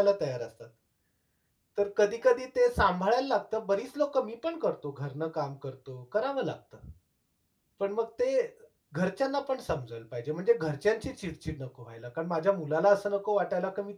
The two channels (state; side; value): identical; both; correlation 1.00